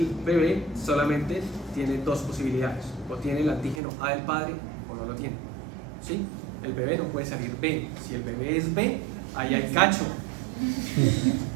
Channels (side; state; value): left; drops out; at 3.8 s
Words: bebé solamente tiene dos posibilidades: o tiene el antígeno A del padre o no lo tiene. ¿Sí? El bebé no puede salir B. Si el bebé es B, ahí hay cacho.